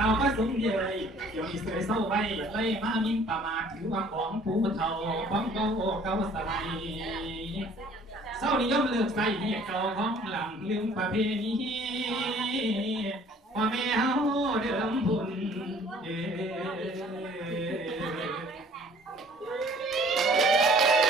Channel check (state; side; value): normal; both; correlation 0.54